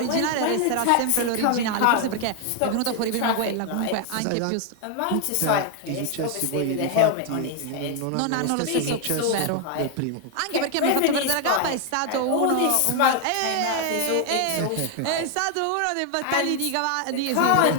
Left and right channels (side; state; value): both; different; correlation 0.00